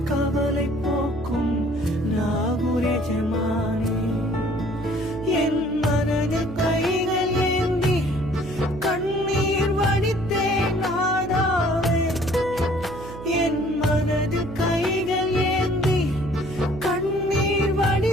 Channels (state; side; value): noise; right; hum, 12 dB below the sound